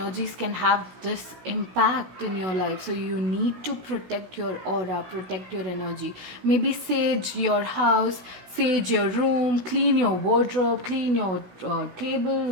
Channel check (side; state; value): left; late; 16 ms